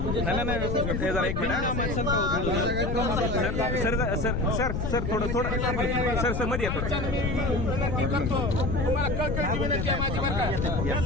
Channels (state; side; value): noise; left; rumble, 1 dB below the sound